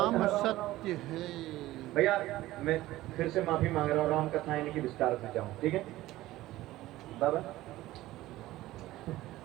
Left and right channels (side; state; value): left; quieter; 16.4 dB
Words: सत्य है। भैया मैं फिर से माफी मांग रहा हूँ, राम कथा यानी कि विस्तार से जाऊं, ठीक है बाबा?